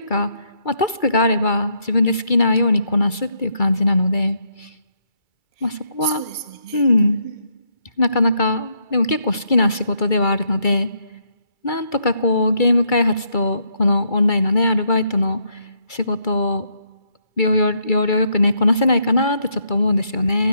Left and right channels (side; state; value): right; late; 2.3 ms